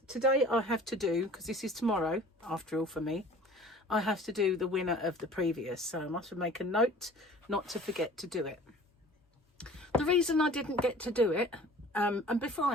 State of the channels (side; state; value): both; normal; correlation 0.46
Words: today I have to do, because this is tomorrow after all for me, I have to do the winner of the previous, so I must make a note not to forget to do it. The reason I didn't get to do it, and before